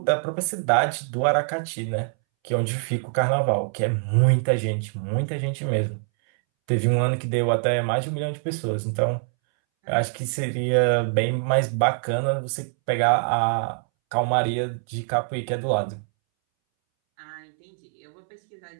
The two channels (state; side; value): silent; left; 62 dB below the other